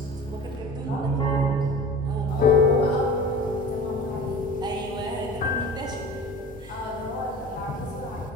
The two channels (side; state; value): both; normal; correlation 0.38